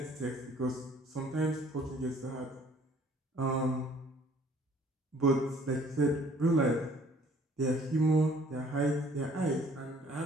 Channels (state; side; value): normal; both; correlation 0.57